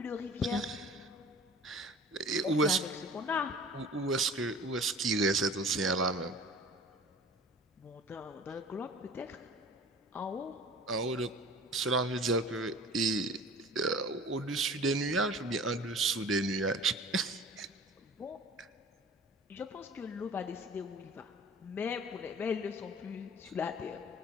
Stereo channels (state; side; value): normal; both; correlation 0.44